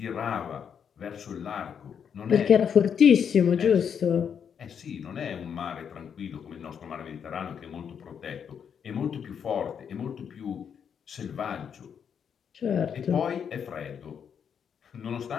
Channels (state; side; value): quieter; right; 7.6 dB